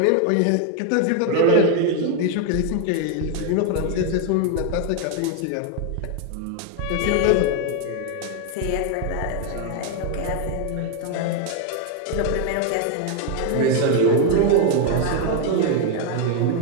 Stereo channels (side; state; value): both; different; correlation 0.01